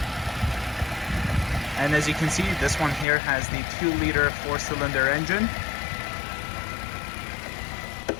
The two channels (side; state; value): right; drops out; at 3.1 s